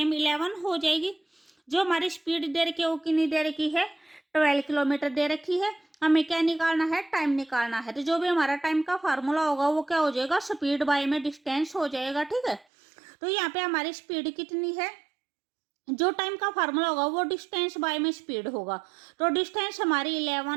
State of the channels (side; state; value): left; drops out; at 12.7 s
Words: 11 हो जाएगी। जो हमारी स्पीड दे रखी है वो कितनी दे रखी है? 12 किलोमीटर दे रखी है। हमें क्या निकालना है? टाइम निकालना है। तो जो भी हमारा टाइम का फार्मूला होगा वो क्या हो जाएगा? स्पीड बाय में डिस्टेंस हो जाएगा। ठीक है, तो यहाँ पे हमारी स्पीड कितनी है? जो टाइम का फार्मूला होगा वो डिस्टेंस बाय में स्पीड होगा। तो डिस्टेंस हमारी